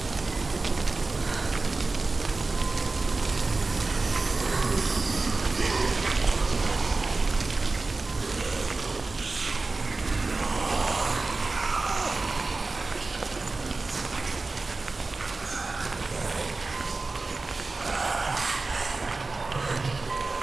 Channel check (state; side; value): quieter; left; 3.6 dB